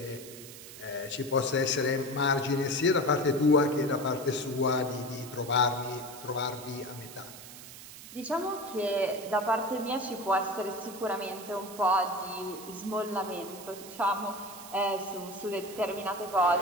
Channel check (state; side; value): noise; right; hiss, 15 dB below the sound